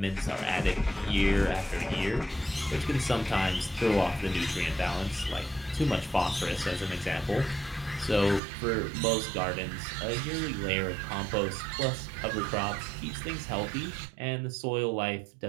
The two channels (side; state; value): left; drops out; at 8.4 s